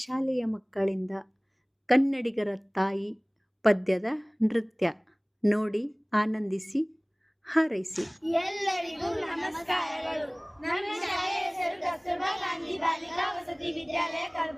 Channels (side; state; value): both; identical; correlation 1.00